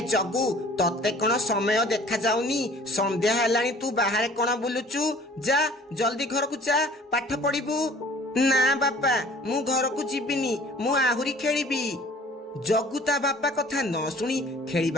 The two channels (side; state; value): both; normal; correlation 0.51